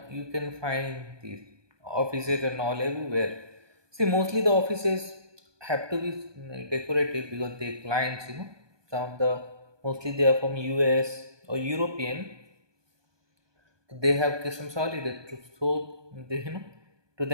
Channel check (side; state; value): left; late; 1.2 ms